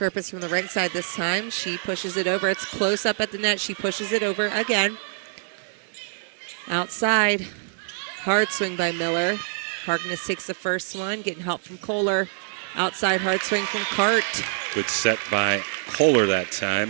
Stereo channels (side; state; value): left; silent; digital silence